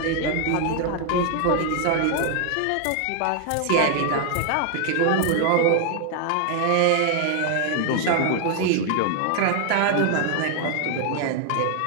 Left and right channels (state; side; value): different; both; correlation 0.00